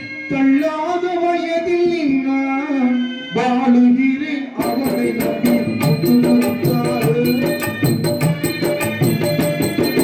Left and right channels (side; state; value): both; identical; correlation 1.00